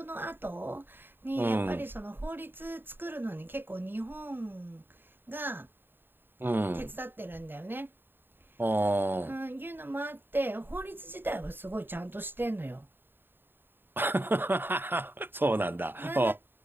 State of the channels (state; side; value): late; left; 0.097 ms